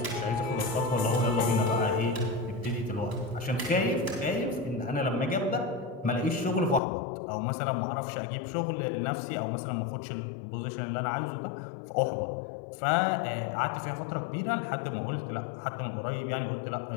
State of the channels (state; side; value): drops out; right; at 6.8 s